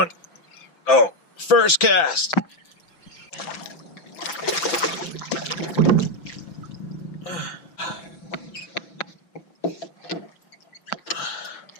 Oh, first cast.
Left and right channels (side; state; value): right; late; 6.0 ms